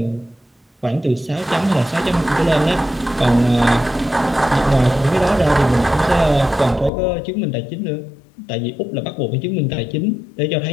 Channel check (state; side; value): drops out; right; at 6.9 s